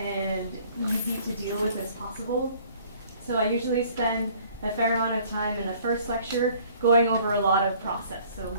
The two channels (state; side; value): inverted; both; correlation -0.55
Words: easy to deal with as possible. So I usually spend a fair amount of time in the first lecture going over a lot of process. So